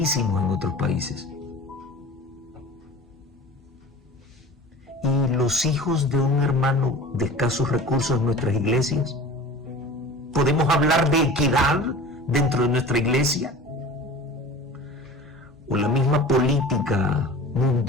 en otros países. ¿Y los hijos de un hermano de escasos recursos en nuestras iglesias? ¿Podemos hablar de equidad dentro de nuestra iglesia? ¿O la misma política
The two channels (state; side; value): normal; both; correlation 0.38